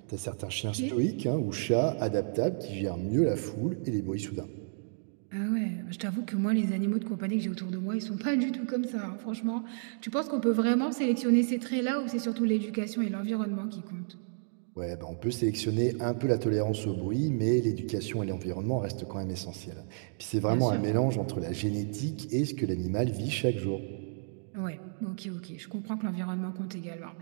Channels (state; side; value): silent; left; digital silence